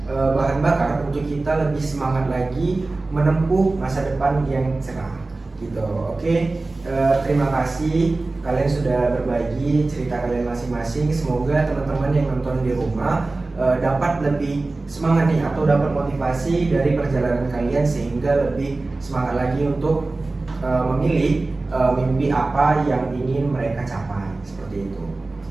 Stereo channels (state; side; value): quieter; left; 3.3 dB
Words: bahan bakar untuk kita lebih semangat lagi menempuh masa depan yang cerah gitu. Oke, terima kasih kalian sudah berbagi cerita kalian masing-masing. Semoga teman-teman yang nonton di rumah dapat lebih semangat nih, atau dapat motivasi dari perjalanan kalian sehingga lebih semangat lagi untuk memilih mimpi apa yang ingin mereka capai, seperti itu.